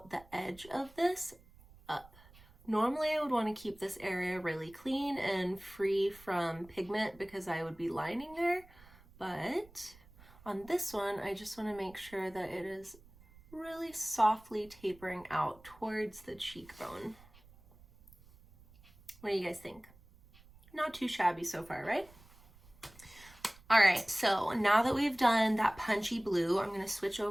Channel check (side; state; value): right; noise; rumble, 24 dB below the sound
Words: the edge of this up. Normally I would want to keep this area really clean and free from pigment because I would be lining there, but on this one I just want to make sure that it is really softly tapering out towards the cheekbone. What do you guys think? Not too shabby so far, right? All right, so now that we've done that punchy blue, I'm gonna switch